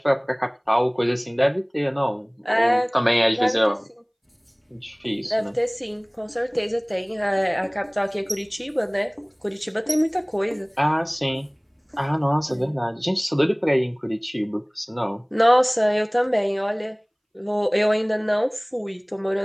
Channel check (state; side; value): identical; both; correlation 1.00